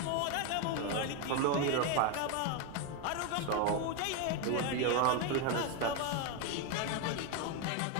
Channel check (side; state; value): both; different; correlation 0.02